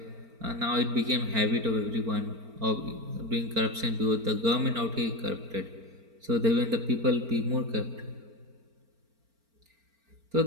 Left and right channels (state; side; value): late; left; 4.4 ms